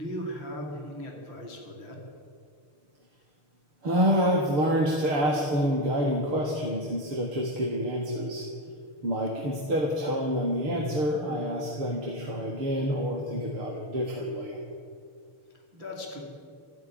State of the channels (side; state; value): left; late; 6.6 ms